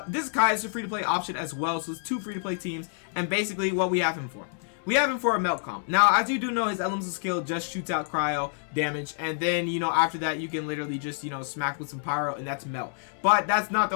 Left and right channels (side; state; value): right; silent; 60 dB below the other